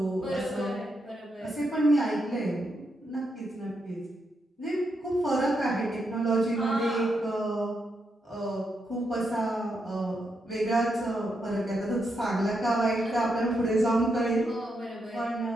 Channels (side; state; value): both; normal; correlation 0.82